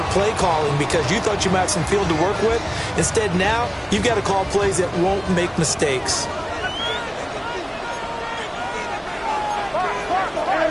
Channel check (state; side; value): identical; both; correlation 1.00